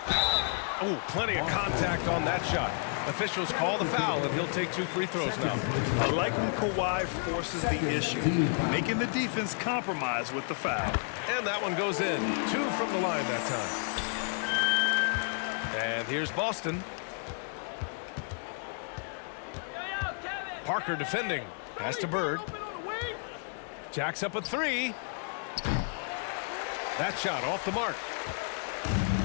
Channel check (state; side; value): silent; right; 57 dB below the other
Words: Oh, plenty of contact on that shot. Officials call the foul, and he'll take 2 free throws now. I like when Kawhi forces the issue, making the defense compromise with the foul. And that one goes in. 2 from the line that time. And here's Boston. Parker defending. Pass to Bird. Jacks up a 3. That shot off the mark.